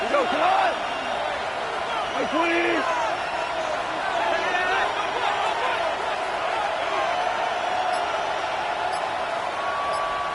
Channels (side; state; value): both; identical; correlation 1.00